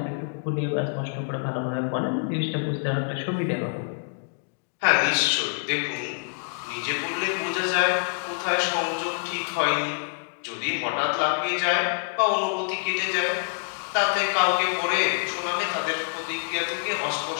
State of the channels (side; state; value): right; silent; digital silence